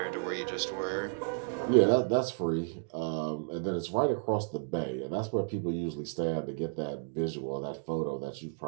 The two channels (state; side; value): silent; left; digital silence